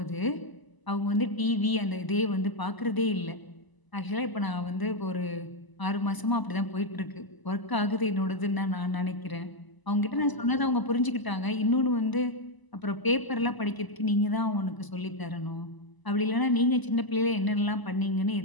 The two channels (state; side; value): late; right; 1.0 ms